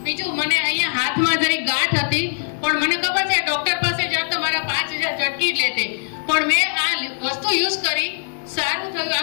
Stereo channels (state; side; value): silent; right; 59 dB below the other